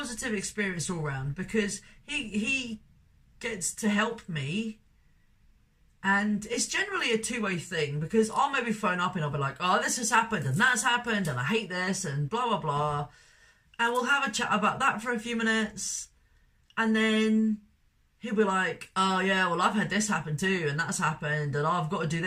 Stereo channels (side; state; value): both; identical; correlation 1.00